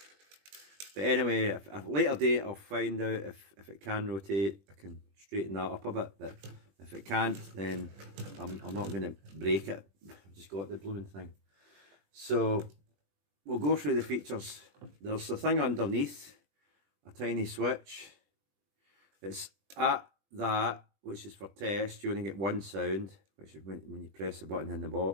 but anyway, at a later date I'll find out if it can rotate. I can straighten that up a bit, but if it can't, then I'm not going to break it. I've just got the blooming thing. So we'll go through the features. There's the thing underneath, a tiny switch. It's at that, which is for test. You only get one sound, which is when you press the button in the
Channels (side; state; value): left; late; 21 ms